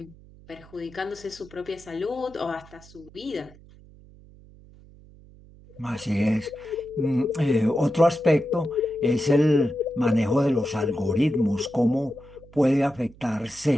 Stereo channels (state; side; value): noise; right; hum, 23 dB below the sound